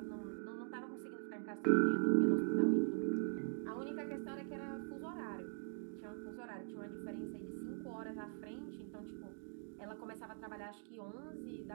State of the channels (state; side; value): silent; left; digital silence